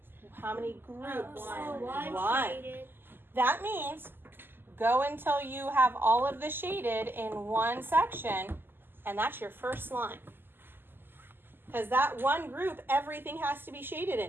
How many groups? One. Shaded. That means go until you have all of the shaded in one section, and that's your first line. Because that one group, everything has to be shaded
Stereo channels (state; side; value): late; left; 0.098 ms